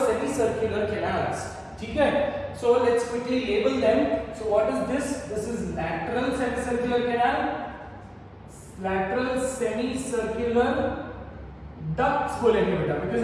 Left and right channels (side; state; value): both; identical; correlation 1.00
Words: semicircular canals. ठीक है? So let's quickly label them. So what is this? This is lateral semicircular canal, lateral semicircular ducts बोलेंगे बेटा, because